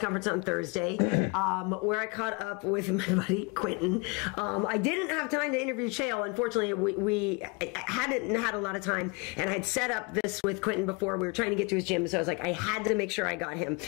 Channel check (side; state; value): right; quieter; 30.2 dB